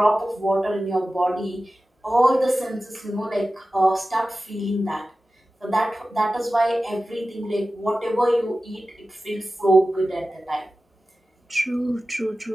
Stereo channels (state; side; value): normal; both; correlation 0.95